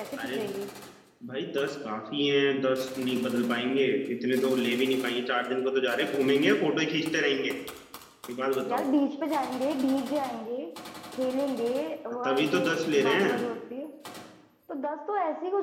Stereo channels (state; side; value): identical; both; correlation 1.00